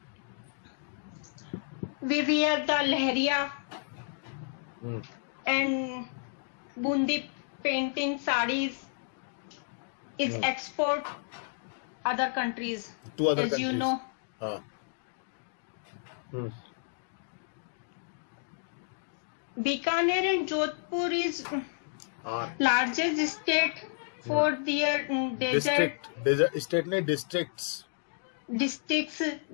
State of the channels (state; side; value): silent; right; digital silence